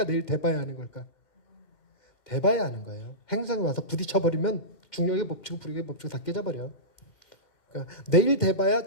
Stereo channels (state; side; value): late; right; 2.2 ms